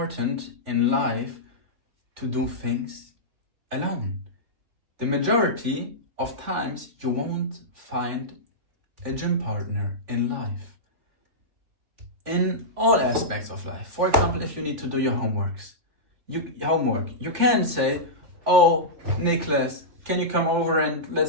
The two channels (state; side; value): late; left; 3.4 ms